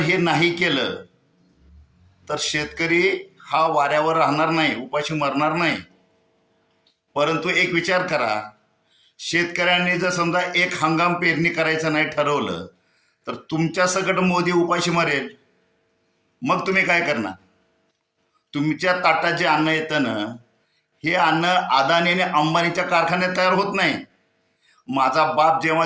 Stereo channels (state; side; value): identical; both; correlation 1.00